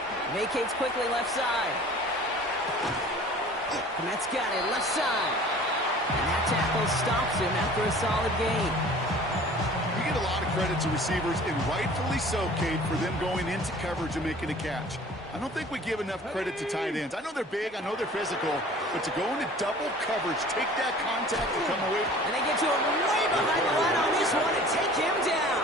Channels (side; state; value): both; normal; correlation 0.46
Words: Vacates quickly left side. Kmet's got it left side. And that tackle stops him after a solid gain. You get a lot of credit to receivers, and rightfully so, Cade, for them going into coverage and making a catch. I don't think we give enough credit to tight ends. I know they're big, I know they're physical, but to go into double coverage, take that contact and come away. And they get to him way behind the line on this one and take him